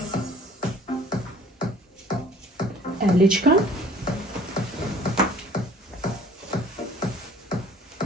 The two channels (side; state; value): both; normal; correlation 0.52